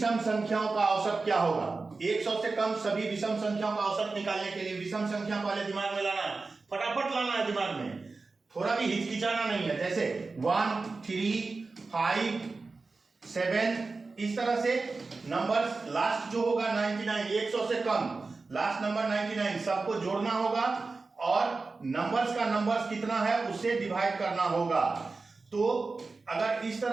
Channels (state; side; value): quieter; left; 3.9 dB